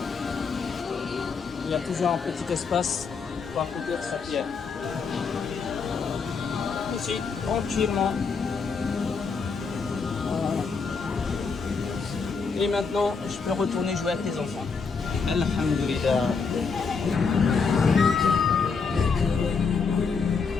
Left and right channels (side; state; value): right; quieter; 5.2 dB